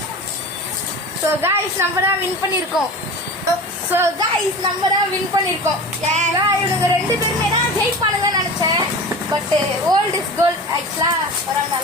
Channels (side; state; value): both; normal; correlation 0.33